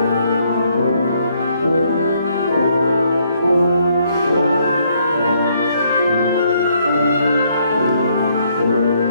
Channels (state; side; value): inverted; both; correlation -0.70